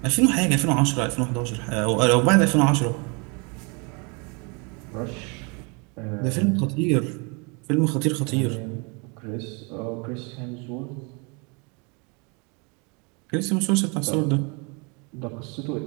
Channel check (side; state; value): left; quieter; 32.2 dB